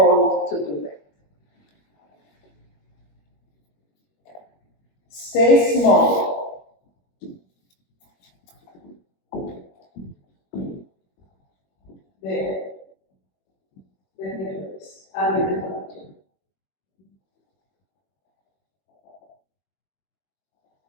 to do that. Stay small. There. Let me do this. I'll be the puppeteer.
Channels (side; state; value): right; late; 21 ms